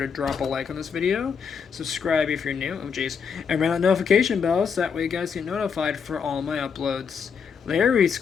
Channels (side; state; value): right; quieter; 6.5 dB